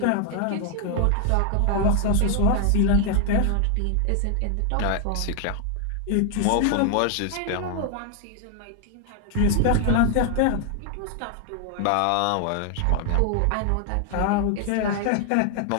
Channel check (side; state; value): both; different; correlation 0.00